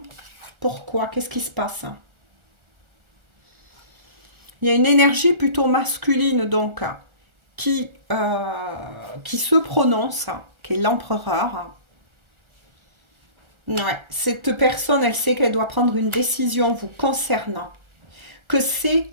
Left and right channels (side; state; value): left; late; 1.4 ms